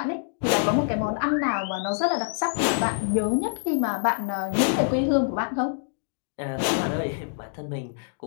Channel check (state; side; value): silent; right; digital silence